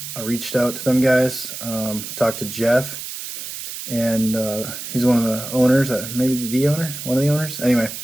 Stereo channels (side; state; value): right; noise; hiss, 8 dB below the sound